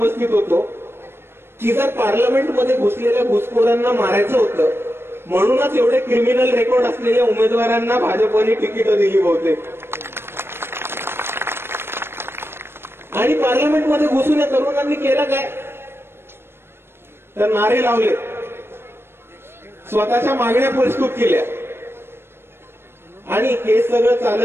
होतो की जर पार्लमेंटमध्ये घुसलेल्या घुसखोरांना मारायचं होतं, म्हणूनच एवढे क्रिमिनल रेकॉर्ड असलेल्या उमेदवारांना भाजपने तिकीट दिली बहुतेक. आणि पार्लमेंटमध्ये घुसून या तरुणांनी केलं काय, तर नारे लावले, स्वतःच्या मागण्या प्रस्तुत केल्या. आणि हे सगळं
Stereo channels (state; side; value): late; left; 0.12 ms